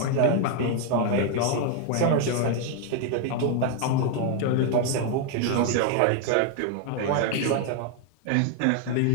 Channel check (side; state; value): both; different; correlation 0.00